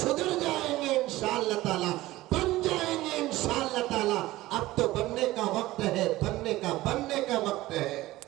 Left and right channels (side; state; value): left; quieter; 17.4 dB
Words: जाएंगे इंशाअल्लाह ताला, बन जाएंगे इंशाअल्लाह ताला। अब तो बनने का वक्त है, बनने का वक्त है।